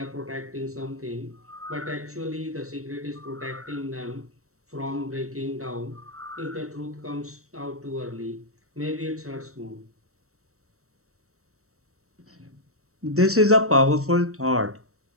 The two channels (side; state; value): left; late; 0.64 ms